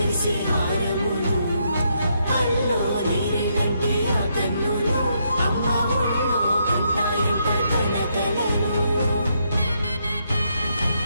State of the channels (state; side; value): inverted; both; correlation -0.77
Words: హారములు అల్లో నీరేలంటే ఆ కన్నులు అమ్మ ఒళ్ళో కంటాయంట కలకలను